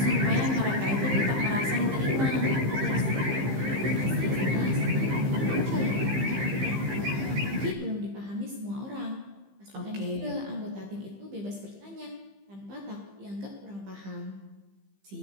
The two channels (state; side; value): late; left; 15 ms